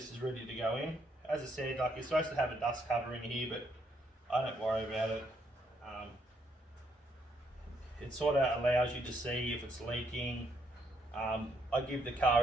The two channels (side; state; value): both; normal; correlation 0.73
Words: is ready to go in. As I said, like, you're supposed to have a dust cover in here, but I don't worry about it. It sort of allows you to see if it's leaking. I give the